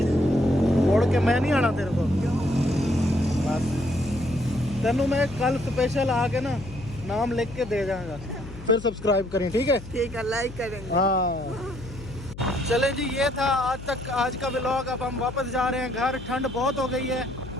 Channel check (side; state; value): left; noise; hum, 14 dB below the sound